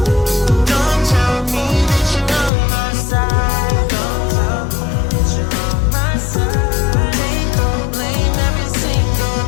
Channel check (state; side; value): drops out; right; at 2.5 s